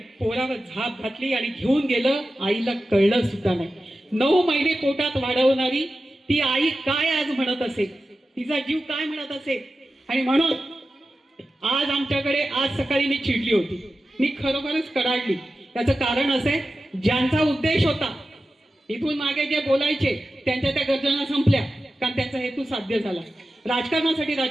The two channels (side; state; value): both; normal; correlation 0.93